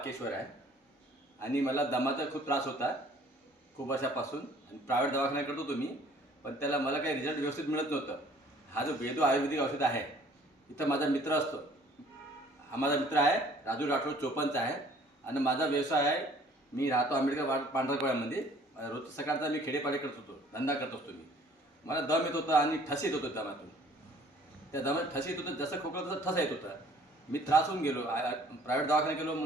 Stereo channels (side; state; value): both; normal; correlation 0.55